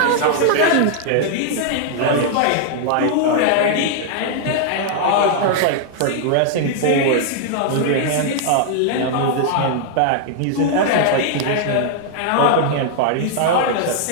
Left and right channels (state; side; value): different; both; correlation -0.01